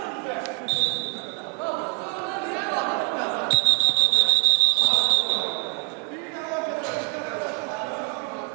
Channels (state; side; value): quieter; left; 33.1 dB